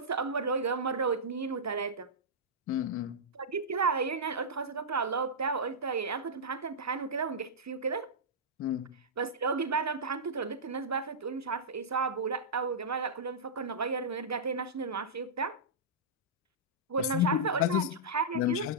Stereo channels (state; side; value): normal; both; correlation -0.13